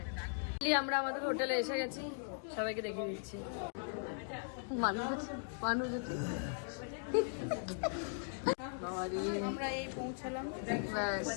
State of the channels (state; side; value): silent; right; digital silence